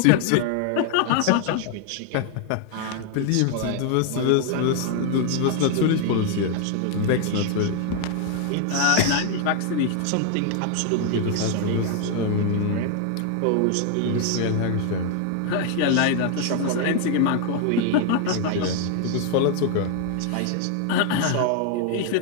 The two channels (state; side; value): different; both; correlation 0.00